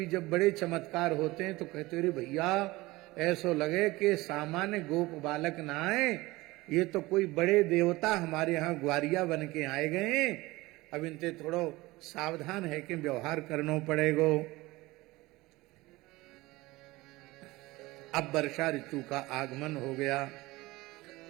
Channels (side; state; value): left; quieter; 20.3 dB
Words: जब बड़े चमत्कार होते हैं तो कहते अरे भैया ऐसो लगे कि सामान्य गोप बालक ना आए, ये तो कोई बड़े देवता हमारे यहाँ ग्वारिया बन के आए गए। अब इनसे थोड़ो सावधान है कि व्यवहार करना पड़ेगो। अब वर्षा ऋतु का आगमन हो गया।